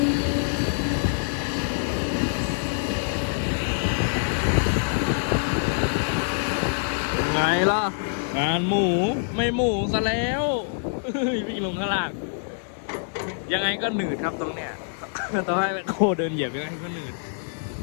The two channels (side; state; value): right; silent; digital silence